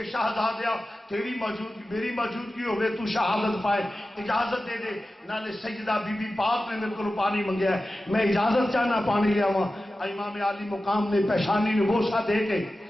شہزادیا تیری موجودگی میری موجودگی ہوئے تو شہادت پائے, اجازت دے دے. نالے سیدہ بی بی پاک نے میرے کو پانی منگیا ہے, میں اجازت چاہنا پانی لیا ہوا. امام عالی مقام نے پیشانی نے بوسا دے کے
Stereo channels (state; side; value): normal; both; correlation 0.94